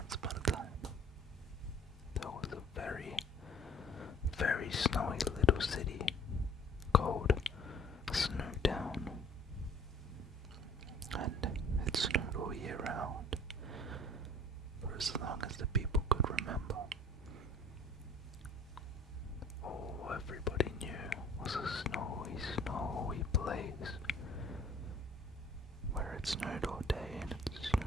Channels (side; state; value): both; normal; correlation 0.53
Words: upon a time, there was a very, very snowy little city called Snowdown, and it snowed all year round, for as long as the people could remember. All everybody knew was a snowy, snowy place, where it snowed all day and it